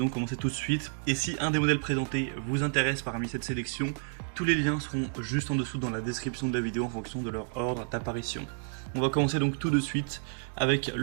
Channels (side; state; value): left; silent; 58 dB below the other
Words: commencer tout de suite. Et si un des modèles présentés vous intéresse parmi cette sélection, tous les liens seront juste en dessous dans la description de la vidéo en fonction de leur ordre d'apparition. On va commencer donc tout de suite avec